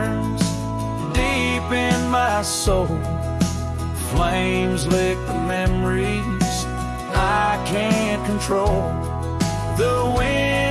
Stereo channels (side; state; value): both; identical; correlation 1.00